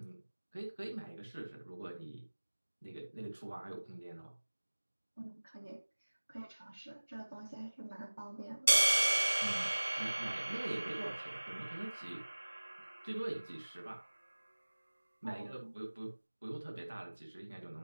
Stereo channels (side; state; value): both; inverted; correlation -1.00